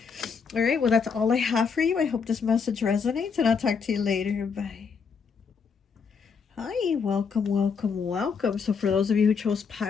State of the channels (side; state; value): right; quieter; 5.8 dB